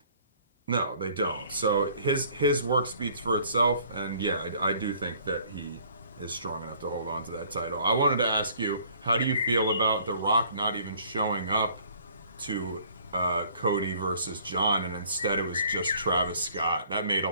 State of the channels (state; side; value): inverted; both; correlation -0.57